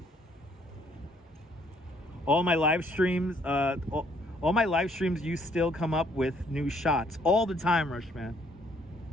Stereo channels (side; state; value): both; normal; correlation 0.65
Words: All my live streams, you still come up with new shots all the time, Rushman.